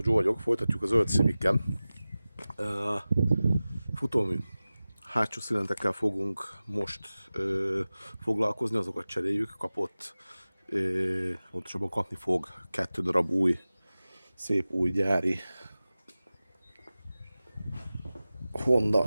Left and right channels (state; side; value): inverted; both; correlation -0.97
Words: Joe vagyok, folytatjuk a zöld Civic-kel. Futómű hátsó szilintekkel fogunk most foglalkozni, azokat cseréljük. Kapott, pontosabban kapni fog 2 darab új, szép új gyári Honda